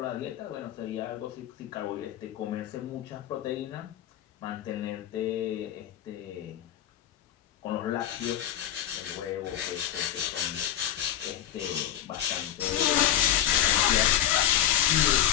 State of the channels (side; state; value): right; quieter; 11.4 dB